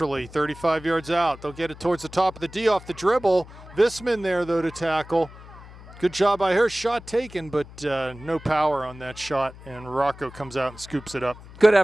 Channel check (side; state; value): left; noise; hum, 18 dB below the sound